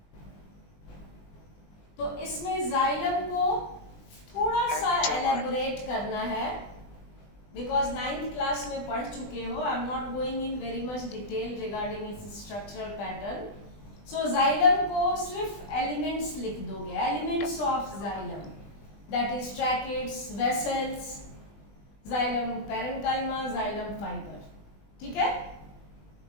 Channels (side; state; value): right; late; 20 ms